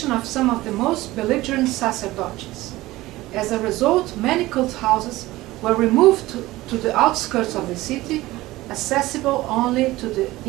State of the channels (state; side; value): quieter; left; 18.1 dB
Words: of some of the most belligerent sacerdotes. As a result, many cult houses were removed to the outskirts of the city, accessible only to the